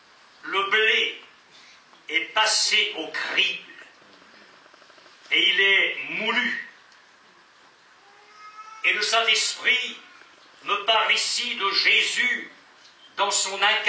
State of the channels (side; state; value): both; identical; correlation 1.00